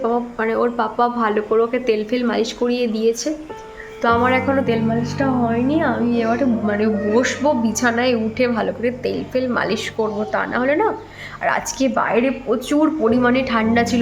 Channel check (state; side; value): identical; both; correlation 1.00